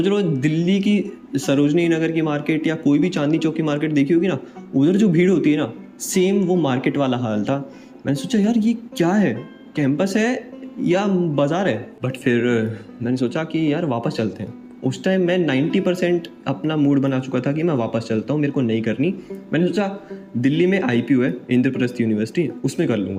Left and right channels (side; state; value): both; identical; correlation 1.00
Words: लो दिल्ली की सरोजनी नगर की मार्केट या कोई भी चांदनी चौक की मार्केट देखी होगी ना, उधर जो भीड़ होती है ना, सेम वो मार्केट वाला हाल था। मैंने सोचा यार ये क्या है, कैंपस है या बाज़ार है। बट फिर मैंने सोचा कि यार वापस चलते हैं। उस टाइम मैं 90% अपना मूड बना चुका था कि मैं वापस चलता हूँ, मेरे को नहीं करनी। मैंने सोचा दिल्ली में IPU है, इंद्रप्रस्थ यूनिवर्सिटी, उसमें कर